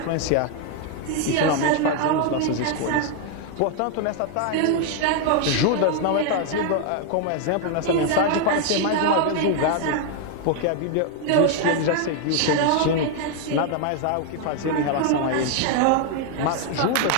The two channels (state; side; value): different; both; correlation 0.00